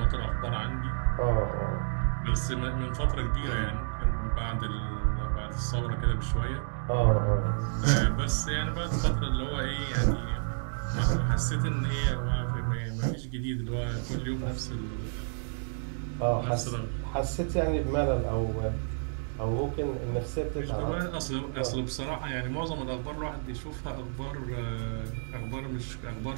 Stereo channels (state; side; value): silent; left; digital silence